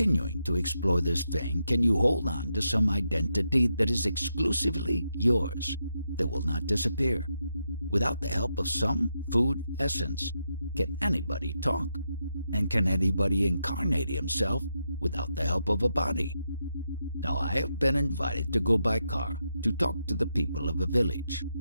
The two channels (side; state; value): both; inverted; correlation -0.84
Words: to explore this vein, can you hold on to some identity that is exclusively yours, that will not disappear? Without the help of some food essence, can anybody talk? And can anybody incarnate himself without the help of a body? Now I have been invited to go by car to talk to the people of a village.